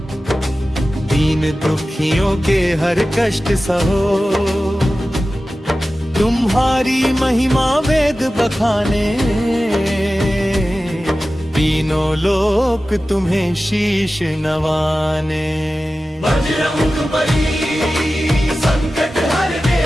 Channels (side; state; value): both; normal; correlation 0.95